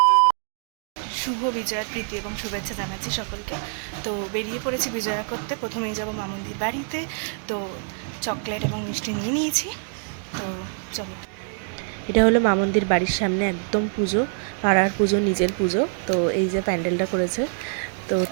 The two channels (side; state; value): left; silent; 56 dB below the other